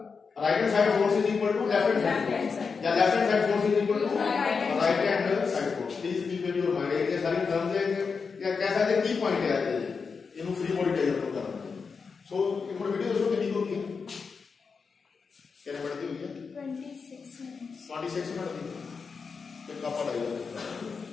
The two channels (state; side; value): quieter; right; 5.2 dB